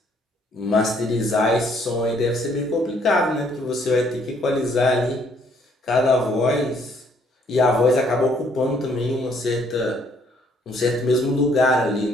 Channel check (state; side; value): normal; both; correlation 0.65